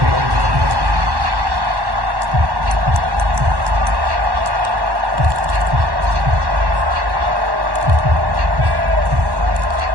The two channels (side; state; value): left; late; 1.1 ms